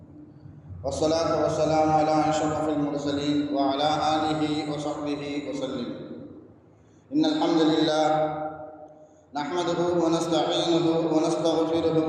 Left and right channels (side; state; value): both; identical; correlation 1.00